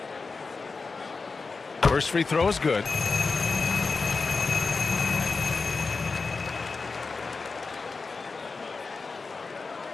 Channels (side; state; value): right; quieter; 4.3 dB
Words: First free throw is good.